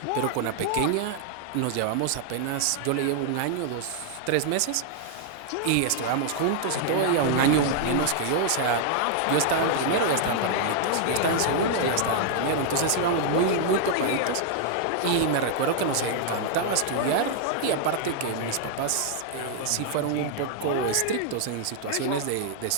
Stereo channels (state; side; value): different; both; correlation -0.01